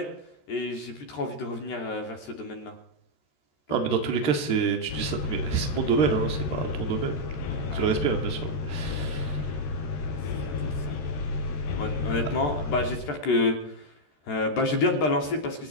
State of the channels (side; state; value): right; late; 13 ms